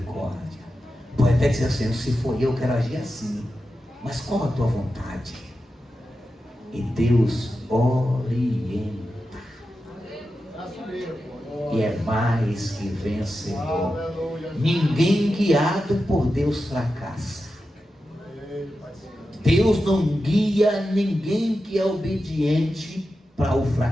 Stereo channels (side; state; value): both; normal; correlation 0.91